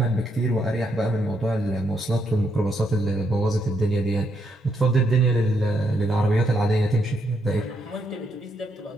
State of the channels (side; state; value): both; normal; correlation 0.77